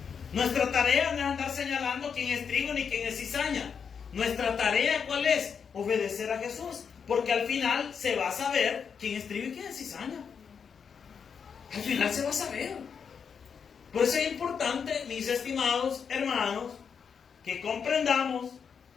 Nuestra tarea no es andar señalando quién es trigo ni quién es cizaña. Nuestra tarea, ¿cuál es? Obedecer a Jesús, porque al final se va a saber quién es trigo y quién es cizaña. Al final se va a saber. Por eso es importante, mis estimados hermanos, que comprendamos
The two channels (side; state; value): right; quieter; 6.6 dB